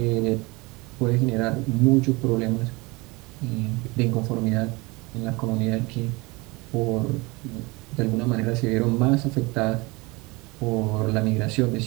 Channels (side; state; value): left; quieter; 24.9 dB